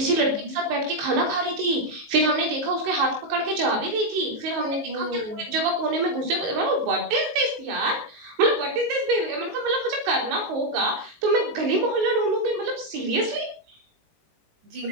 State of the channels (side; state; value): left; late; 19 ms